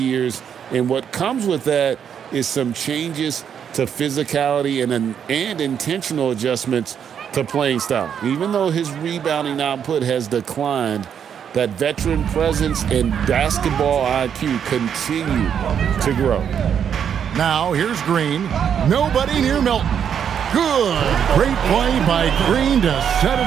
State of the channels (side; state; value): left; quieter; 8.2 dB